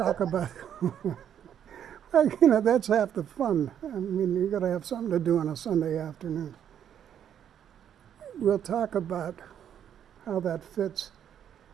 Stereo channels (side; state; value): left; quieter; 9.3 dB